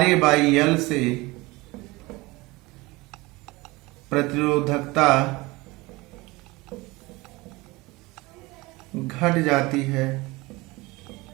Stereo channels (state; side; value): quieter; left; 22.4 dB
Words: ए बाई एल से प्रतिरोधकता घट जाती है,